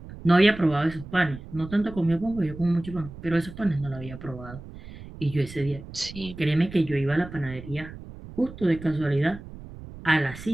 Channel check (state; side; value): noise; right; rumble, 15 dB below the sound